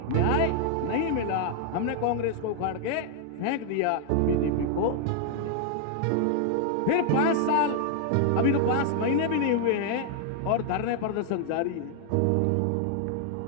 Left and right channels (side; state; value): both; different; correlation 0.00